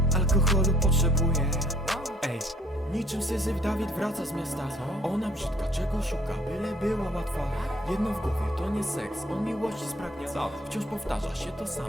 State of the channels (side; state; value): both; normal; correlation 0.61